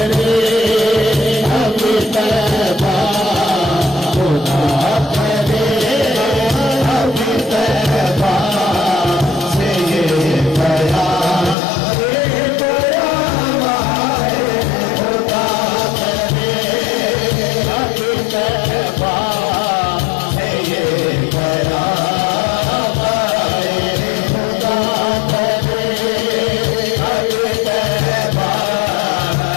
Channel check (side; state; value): right; drops out; at 11.6 s